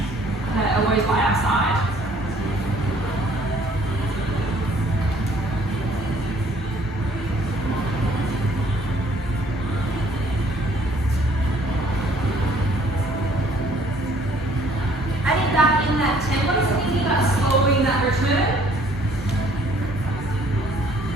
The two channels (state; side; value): normal; both; correlation 0.59